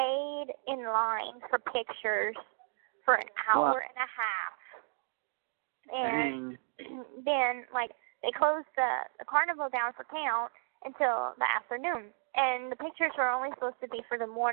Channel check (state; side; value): silent; left; digital silence